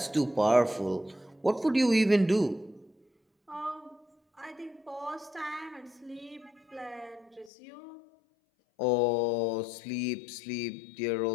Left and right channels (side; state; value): right; drops out; at 7.5 s